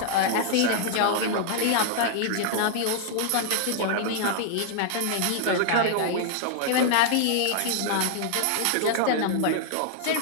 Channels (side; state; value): both; different; correlation 0.00